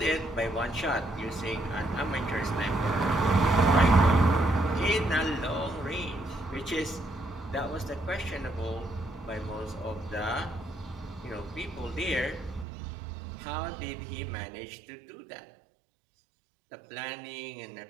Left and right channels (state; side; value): drops out; left; at 12.7 s